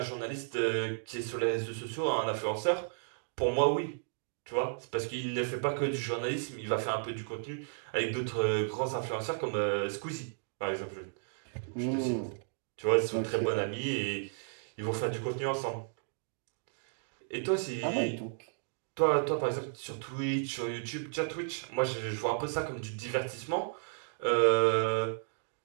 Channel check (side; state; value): left; silent; digital silence